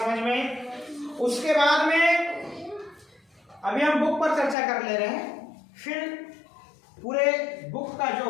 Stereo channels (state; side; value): drops out; right; at 4.5 s